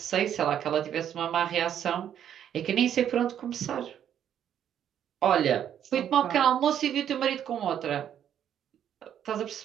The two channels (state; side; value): quieter; left; 9.7 dB